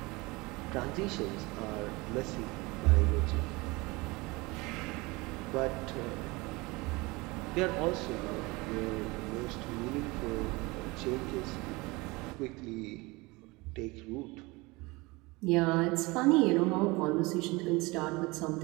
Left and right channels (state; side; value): quieter; left; 23.8 dB